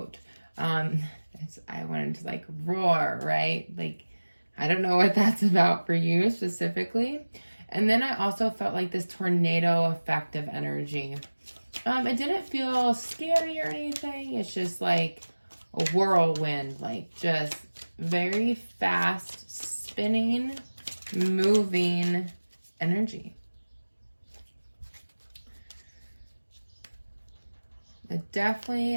I wanted to like roar, right? Like, I don't know what that's about for you specifically. And then I also felt like this tornado effect of energy. It didn't feel scary or anything. It's just like a whirlwind, like just very fast spinning, moving energy. But definitely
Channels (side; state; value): both; inverted; correlation -1.00